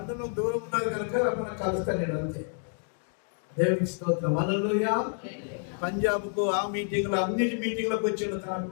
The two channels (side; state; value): right; silent; 59 dB below the other